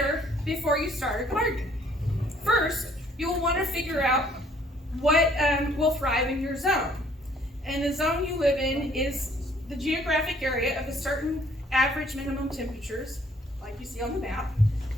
before you start a garden. First, you'll want to figure out what will thrive in your zone. And the zone you live in is the geographic area of a certain average minimum temperatures, like you see on the map.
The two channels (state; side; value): normal; both; correlation 0.61